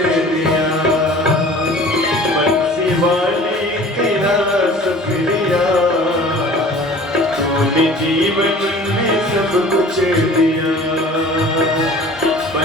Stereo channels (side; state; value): both; normal; correlation 0.45